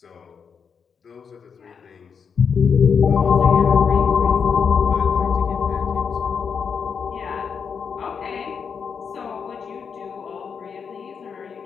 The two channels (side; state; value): right; quieter; 6.4 dB